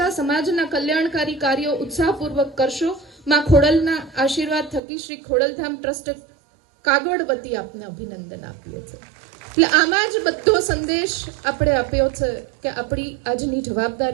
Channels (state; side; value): drops out; left; at 4.8 s